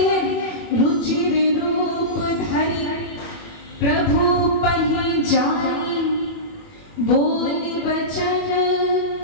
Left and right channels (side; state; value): right; late; 21 ms